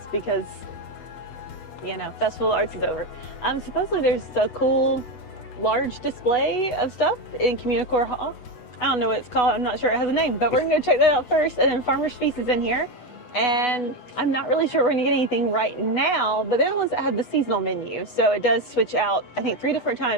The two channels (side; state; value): right; late; 8.1 ms